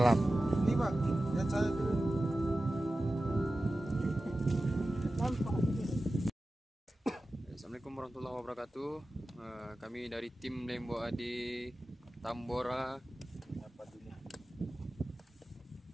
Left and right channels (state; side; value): normal; both; correlation 0.95